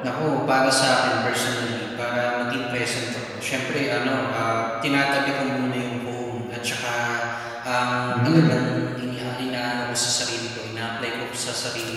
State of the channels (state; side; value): identical; both; correlation 1.00